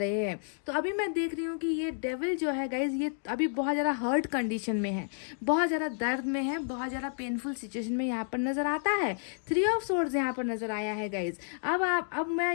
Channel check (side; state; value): right; silent; digital silence